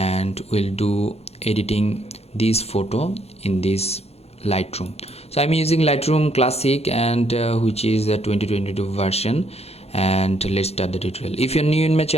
we'll do editing this photo in this Lightroom. So I'm using Lightroom Classic, and which is the 2022 version. And let's start the tutorial. If you're new in my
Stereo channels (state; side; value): late; right; 0.30 ms